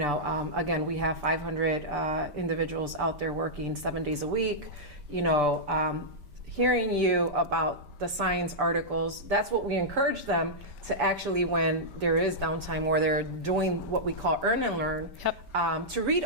again, we have 500 individuals out there working 7 days a week. You know, hearing you about the science articles, that's what we encourage them to actually, when there is downtime or they're doing what we call earn and learn, to read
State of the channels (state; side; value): late; left; 5.1 ms